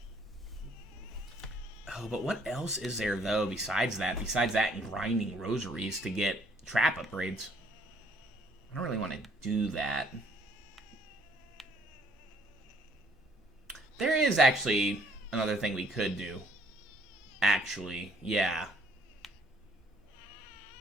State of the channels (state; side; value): normal; both; correlation 0.62